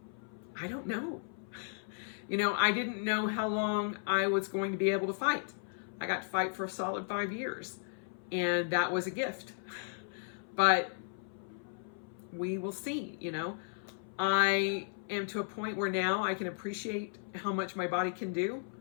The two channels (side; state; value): right; silent; 54 dB below the other